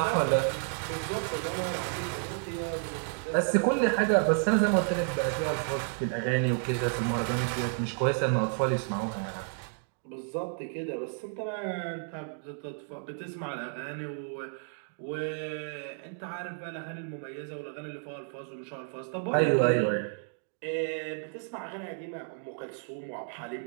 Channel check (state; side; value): silent; left; 57 dB below the other